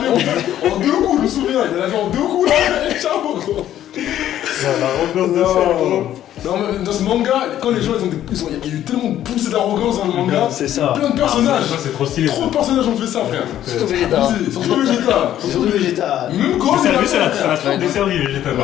en 2 coups, je me souviens, il a lavé en 2 coups là, et ciao gros. Non, mais dans ce manga, quand les gens il y a eu tellement poussé d'arrogance dans le manga, C'est ça. plein de personnages, Ça, c'est trop stylé. trop de personnages ont fait ça frère. Surtout Vegeta. Abusé, surtout Vegeta. Surtout Vegeta. Même Gohan, Ça il a lui, ça fait. l'a trop desservi, Vegeta,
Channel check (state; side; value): quieter; right; 11.8 dB